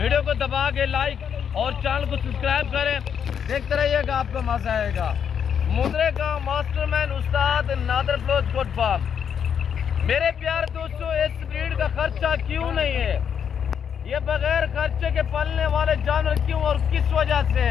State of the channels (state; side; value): quieter; right; 7.8 dB